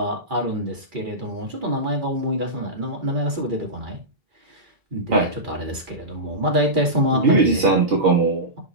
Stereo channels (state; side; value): late; left; 2.4 ms